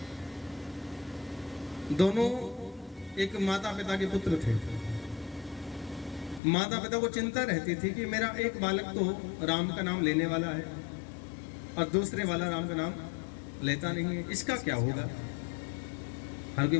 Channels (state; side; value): drops out; right; at 6.4 s